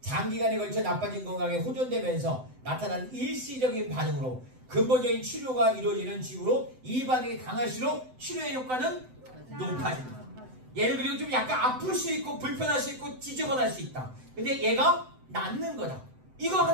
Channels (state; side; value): late; left; 7.9 ms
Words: 걸쳐 나빠진 건강에 호전되면서 나타난 일시적인 반응으로 근본적인 치료가 이루어지는 징후로 이 반응이 강할수록 치료의 효과는 높아진다. 얘는 그리고 좀 약간 아플 수 있고 불편할 수 있고 지저분할 수 있다. 근데 얘가 낫는 거다. 이거